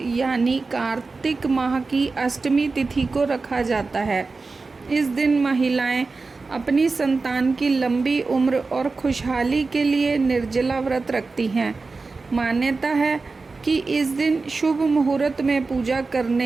कार्तिक माह की अष्टमी तिथि को रखा जाता है। इस दिन महिलाएं अपनी संतान की लंबी उम्र और खुशहाली के लिए निर्जला व्रत रखती हैं। मान्यता है कि इस दिन शुभ मुहूर्त में पूजा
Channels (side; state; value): left; quieter; 4.0 dB